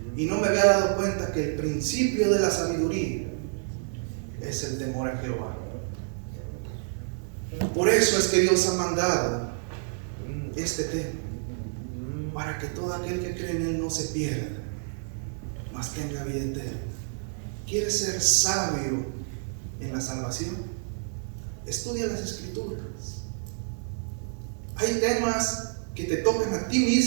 Y no me había dado cuenta que el principio de la sabiduría es el temor a Jehová. Por eso es que Dios ha mandado este tema, para que todo aquel que cree en Él no se pierda, mas tenga vida eterna. ¿Quieres ser sabio en la salvación? Estudia las escrituras. Hay temas que te tocan a ti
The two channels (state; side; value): silent; left; 59 dB below the other